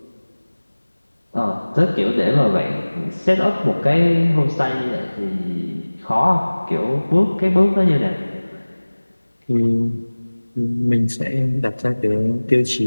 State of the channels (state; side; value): inverted; both; correlation -1.00